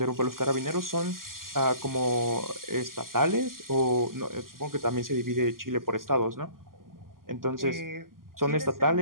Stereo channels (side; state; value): left; late; 0.91 ms